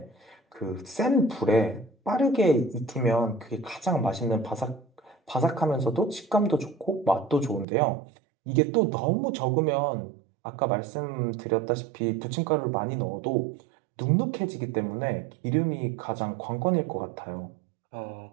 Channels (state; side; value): drops out; left; at 7.7 s